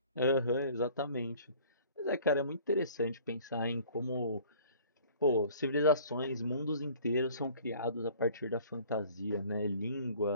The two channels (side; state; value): both; inverted; correlation -0.51